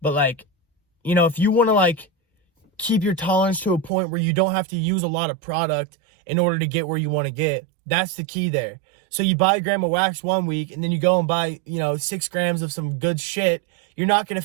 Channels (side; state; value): left; drops out; at 3.9 s